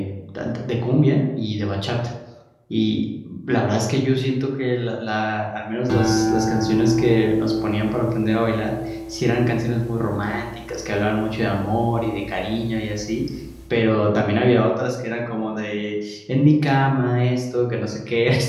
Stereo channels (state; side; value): identical; both; correlation 1.00